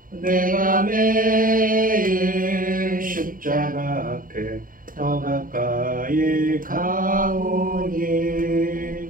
내가 매일 십자가 앞에 더 가까이 가오니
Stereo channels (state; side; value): late; left; 0.40 ms